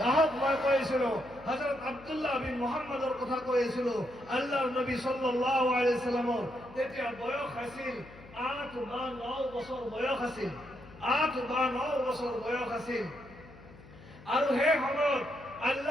আহক, মই কৈছিলো হযরত আব্দুল্লাহ বিন মুহাম্মদৰ কথা কৈছিলো। আল্লাহৰ নবী সাল্লাল্লাহু আলাইহি ওয়াসাল্লামৰ তেতিয়া বয়স আছিল 8 বা 9 বছৰ বয়স আছিল। 8 বা 9 বছৰ বয়স আছিল। আৰু সেই সময়ত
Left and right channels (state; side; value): noise; left; hum, 20 dB below the sound